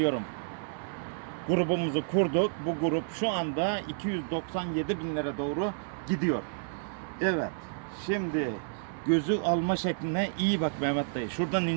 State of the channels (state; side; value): silent; left; 58 dB below the other